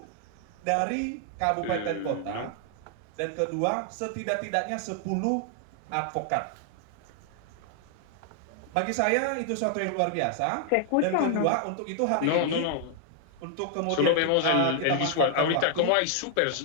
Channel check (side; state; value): both; different; correlation 0.00